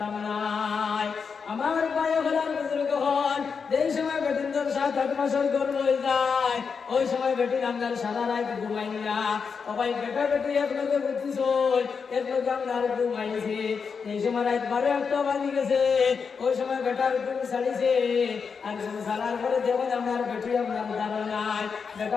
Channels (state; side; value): quieter; right; 5.7 dB